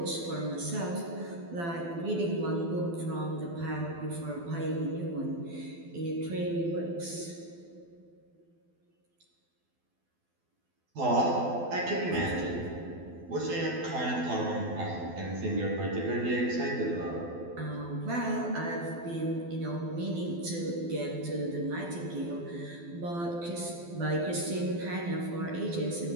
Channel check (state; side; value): late; left; 12 ms